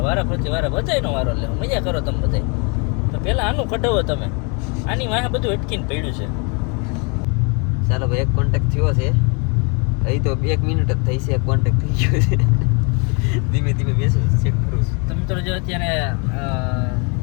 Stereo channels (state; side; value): quieter; right; 33.9 dB